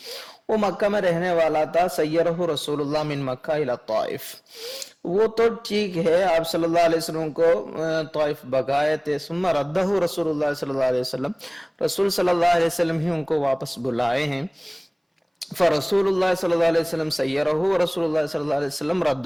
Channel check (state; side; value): identical; both; correlation 1.00